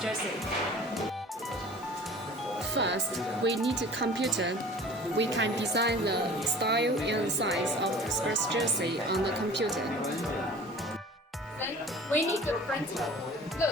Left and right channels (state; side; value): normal; both; correlation 0.44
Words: jersey. First, we need a computer. We can design the style and size of the sports jersey on the computer. Then we need a printer.